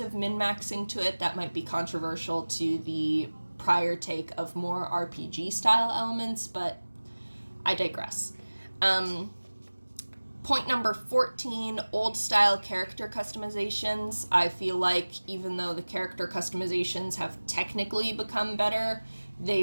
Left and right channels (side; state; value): both; inverted; correlation -1.00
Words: of min-maxing to it that might be controversial to the prior take of more RPG style elements, but I digress. Point number 14, old style character customizations. I feel like even though the character customizations have technically become better,